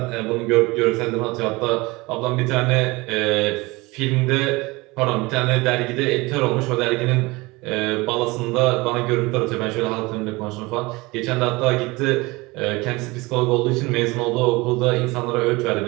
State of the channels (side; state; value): left; quieter; 23.2 dB